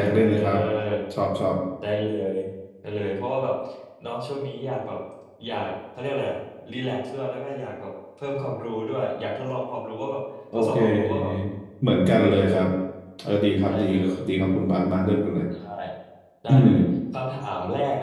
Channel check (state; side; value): identical; both; correlation 1.00